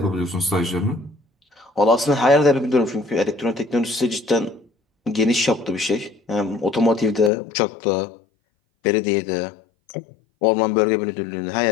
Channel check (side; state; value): right; drops out; at 7.3 s